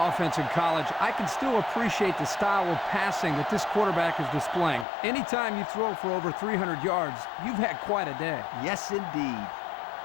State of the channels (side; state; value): right; drops out; at 4.9 s